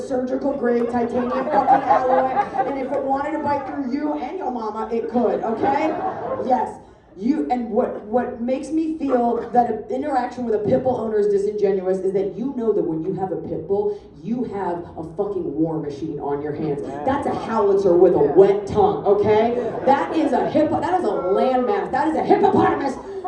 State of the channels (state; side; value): identical; both; correlation 1.00